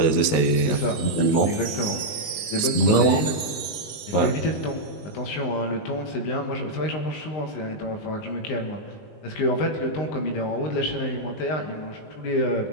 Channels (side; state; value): right; late; 19 ms